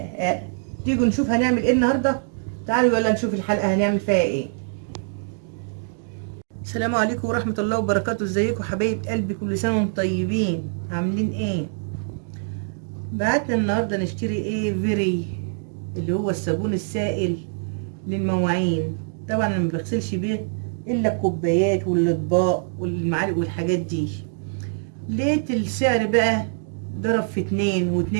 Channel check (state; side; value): silent; left; digital silence